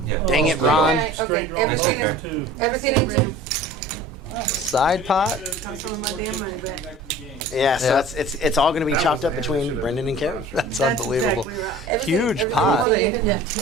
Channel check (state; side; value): normal; both; correlation 0.43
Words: Yeah. dang it, Straight Ron. Okay, Straight draw. everything That's is, Two. everything in two. Side pot. Got some of my damn money back. Yeah, so Yeah. it's all going to be chopped up between Brendan and Karen. That's That's unbelievable. exactly right. Everything, Huge everything pot. is Well, they in. even have